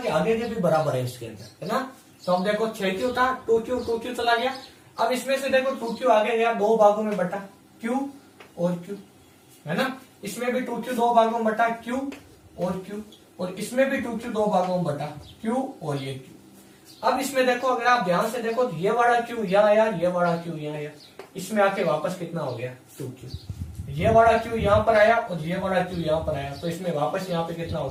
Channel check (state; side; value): identical; both; correlation 1.00